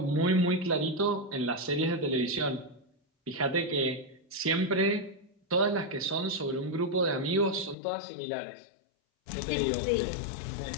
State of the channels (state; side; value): drops out; right; at 7.8 s